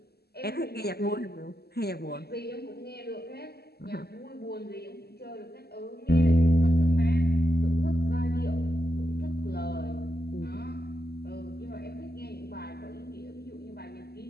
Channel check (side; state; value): right; late; 0.46 ms